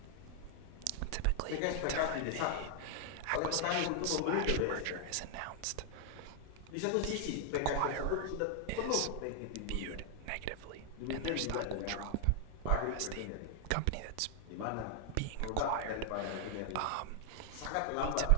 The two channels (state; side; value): different; both; correlation 0.00